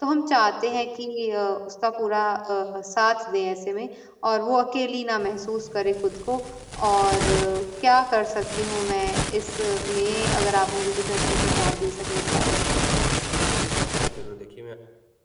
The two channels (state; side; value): identical; both; correlation 1.00